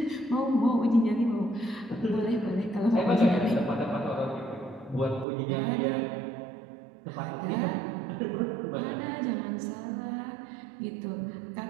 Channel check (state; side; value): drops out; left; at 5.2 s